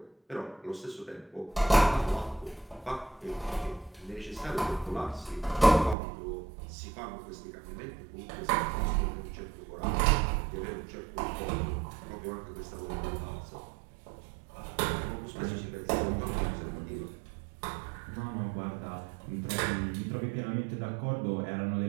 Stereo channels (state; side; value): drops out; left; at 6.0 s